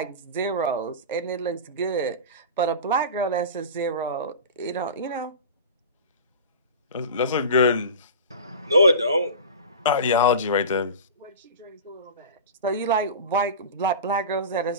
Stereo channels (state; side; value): inverted; both; correlation -0.31